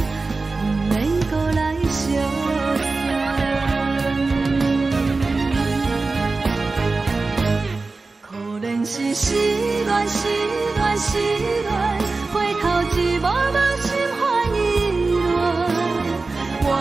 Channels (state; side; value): quieter; left; 3.7 dB